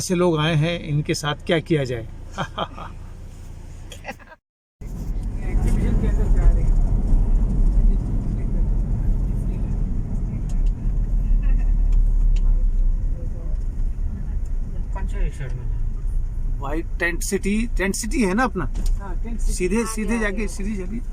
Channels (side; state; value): both; identical; correlation 1.00